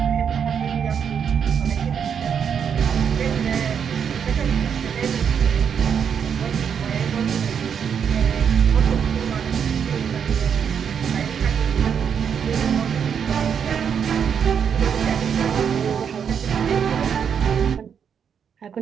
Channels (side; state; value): left; quieter; 7.5 dB